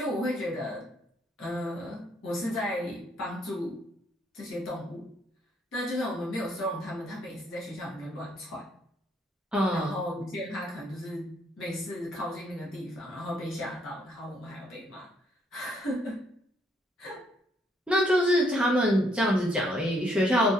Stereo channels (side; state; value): both; normal; correlation 0.70